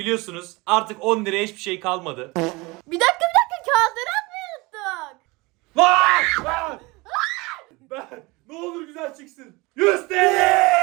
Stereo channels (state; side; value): quieter; left; 24.2 dB